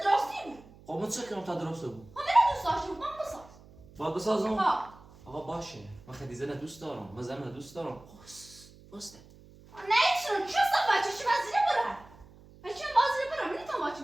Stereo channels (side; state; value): right; noise; hum, 23 dB below the sound